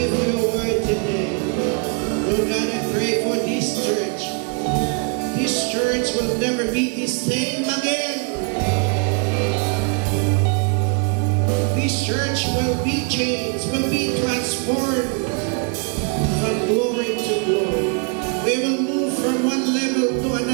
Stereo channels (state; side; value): quieter; left; 37.0 dB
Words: you for your word today. Lord God, I pray for this church. This church will never be the same again. This church will be changed, will be transformed from glory to glory. We will move from one level to